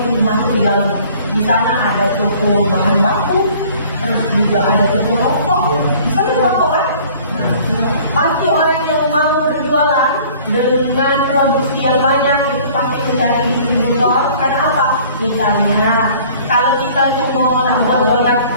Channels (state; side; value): inverted; both; correlation -0.52